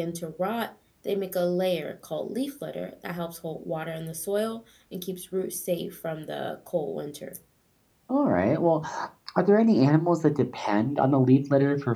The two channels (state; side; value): identical; both; correlation 1.00